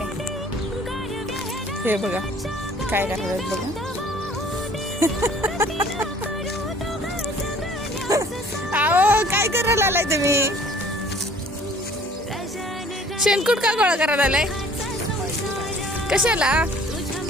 हे बघा काय करायला बघा. आओ काय करायला आलाय तुम्ही? शेणकूट का गोळा करायला आलाय? कशाला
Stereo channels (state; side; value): normal; both; correlation 0.53